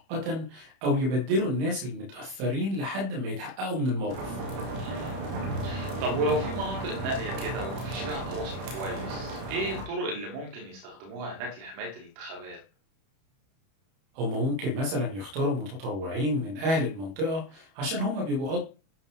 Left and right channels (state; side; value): late; left; 31 ms